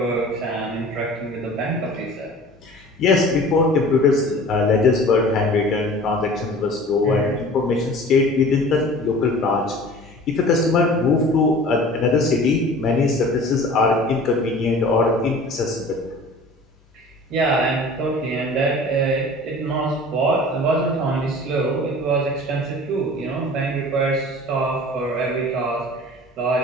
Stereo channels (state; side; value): normal; both; correlation 0.43